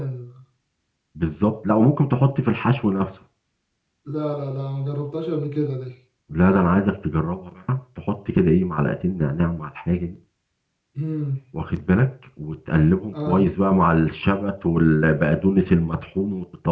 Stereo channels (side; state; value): both; identical; correlation 1.00